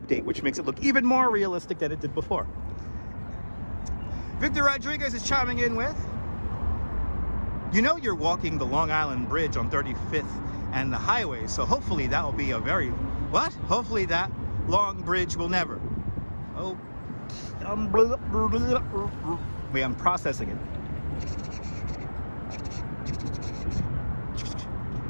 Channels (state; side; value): inverted; both; correlation -1.00